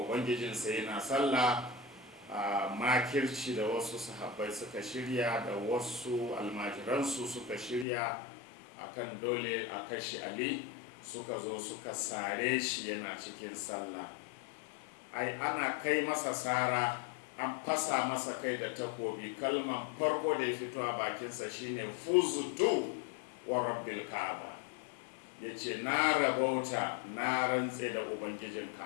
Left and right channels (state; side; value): drops out; right; at 7.9 s